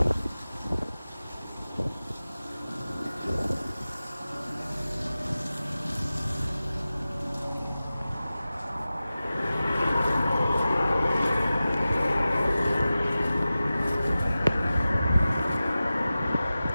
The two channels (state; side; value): inverted; both; correlation -0.95